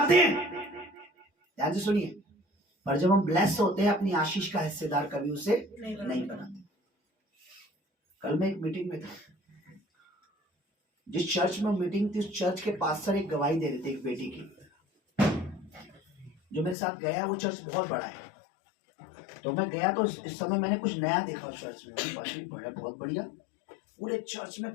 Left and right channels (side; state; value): right; drops out; at 16.8 s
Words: हैं, ध्यान से सुनिए, पर जब हम ब्लेस होते हैं अपनी आशीष का हिस्सेदार कभी उसे नहीं बनाते। कल मैं एक मीटिंग में था, जिस चर्च में मीटिंग थी उस चर्च के पास्टर एक गवाही दे रहे थे एक बेटी की। जो मेरे साथ गया वो चर्च बहुत बड़ा है, तो मैं गया तो इस समय मैंने कुछ नया देखा उस चर्च में। पास्टर बड़ा बहुत बढ़िया, पूरे चर्च में